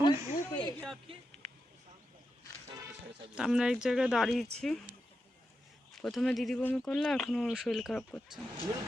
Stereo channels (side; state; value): both; normal; correlation 0.88